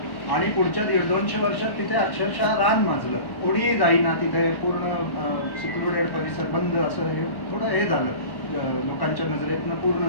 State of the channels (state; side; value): late; right; 1.1 ms